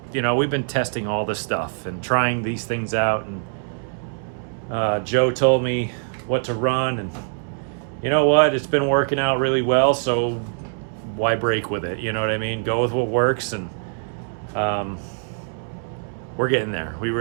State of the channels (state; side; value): silent; left; 63 dB below the other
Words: You know, we've been testing all this stuff and trying these things out, and Joe told me what to run, and you know what, it's been working out really well, so why break with it? You know what I mean? Go with what works, and we're getting there. We